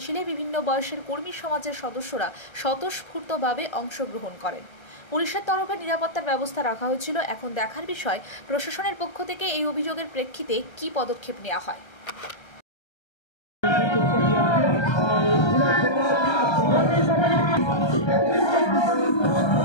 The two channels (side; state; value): right; late; 1.3 ms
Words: বিভিন্ন বয়সের কর্মী সমাজের সদস্যরা স্বতঃস্ফূর্তভাবে অংশগ্রহণ করেন। পুলিশের তরফে নিরাপত্তার ব্যবস্থা রাখা হয়েছিল। এখন দেখার বিষয় প্রশাসনের পক্ষ থেকে এই অভিযোগের প্রেক্ষিতে কী পদক্ষেপ নেওয়া হয়।